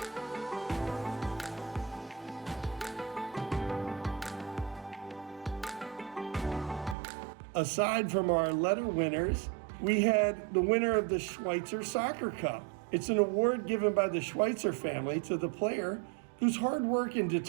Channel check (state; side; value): drops out; left; at 7.0 s